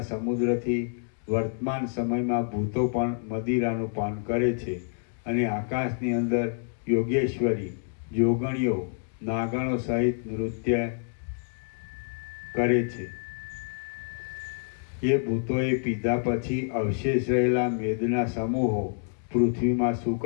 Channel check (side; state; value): right; silent; digital silence